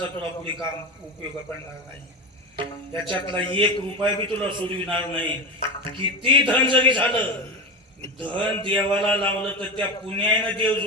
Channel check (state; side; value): normal; both; correlation 0.21